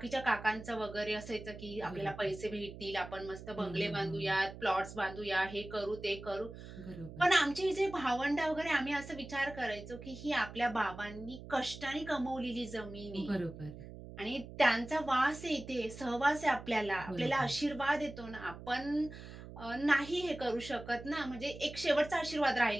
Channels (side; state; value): right; noise; hum, 13 dB below the sound